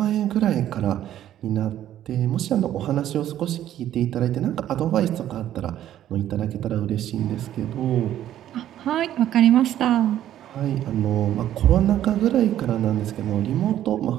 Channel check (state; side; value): quieter; left; 11.9 dB